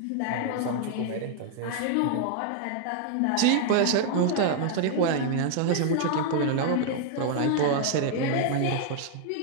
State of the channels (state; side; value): different; both; correlation 0.00